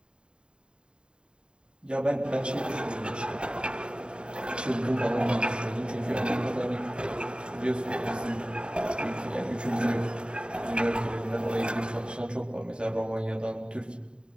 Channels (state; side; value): late; left; 0.051 ms